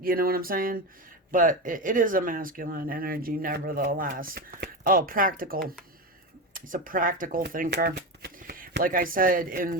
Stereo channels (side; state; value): both; normal; correlation 0.18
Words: you know what I'm saying? But it is a masculine energy nevertheless. Oh, practical. He's a practical thinker. Like I said